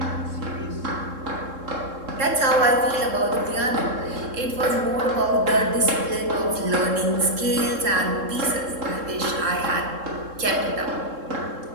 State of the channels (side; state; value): left; late; 3.7 ms